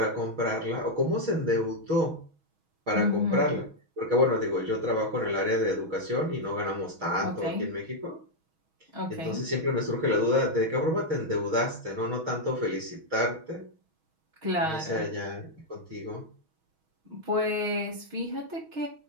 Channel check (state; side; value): late; left; 6.3 ms